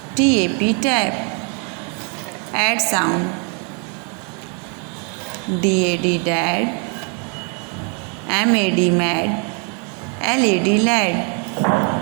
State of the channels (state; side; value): quieter; left; 37.7 dB